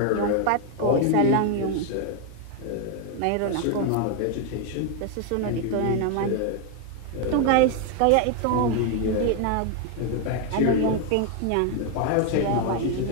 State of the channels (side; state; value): both; different; correlation 0.01